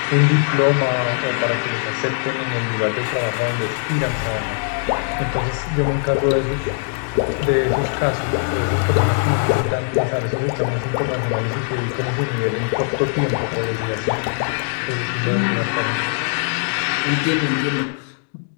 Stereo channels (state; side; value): silent; right; 58 dB below the other